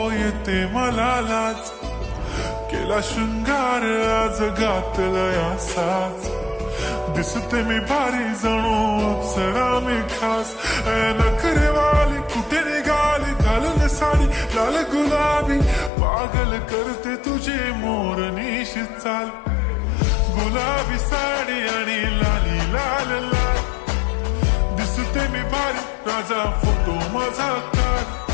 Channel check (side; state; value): right; drops out; at 15.9 s